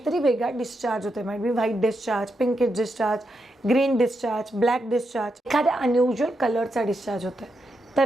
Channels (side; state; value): both; normal; correlation 0.84